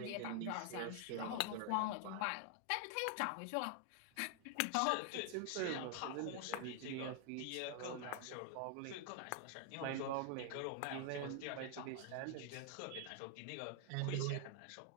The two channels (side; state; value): both; different; correlation 0.00